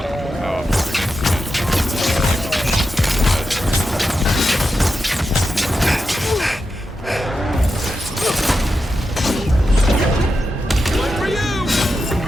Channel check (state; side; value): normal; both; correlation 0.89